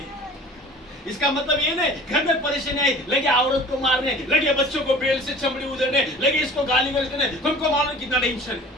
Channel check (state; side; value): normal; both; correlation 0.44